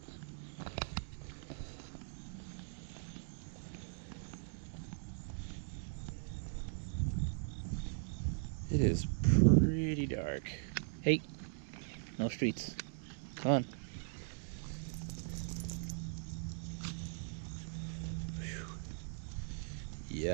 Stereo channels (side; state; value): left; silent; digital silence